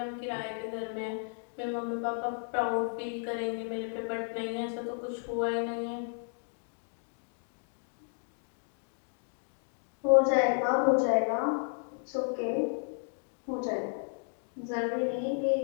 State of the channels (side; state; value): right; silent; 56 dB below the other